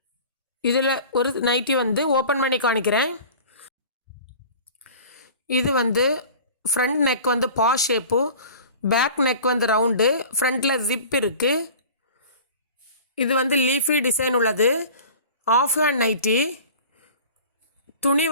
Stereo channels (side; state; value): both; inverted; correlation -0.42